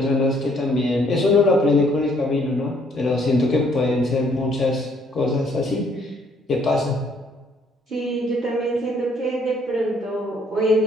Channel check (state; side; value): normal; both; correlation 0.65